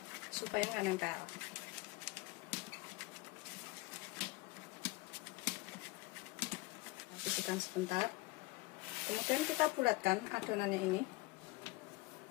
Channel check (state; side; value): quieter; right; 22.1 dB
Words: supaya nggak nempel. Kita sisihkan sebentar. Kemudian kita bulatkan adonannya ini.